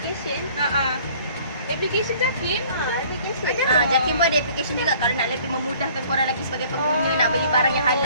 Application JAKIM? Application. JAKIM pun ada application juga. Kalau nak lebih memudahkan korang lagi sebagai pengguna nak beli barang yang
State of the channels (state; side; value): inverted; both; correlation -0.54